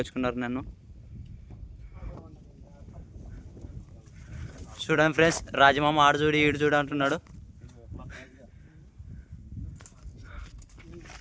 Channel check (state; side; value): identical; both; correlation 1.00